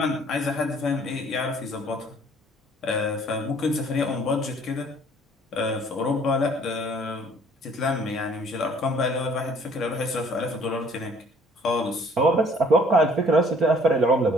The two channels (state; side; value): normal; both; correlation 0.57